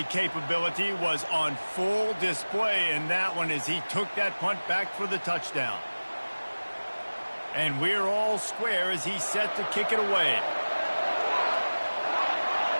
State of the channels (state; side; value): inverted; both; correlation -1.00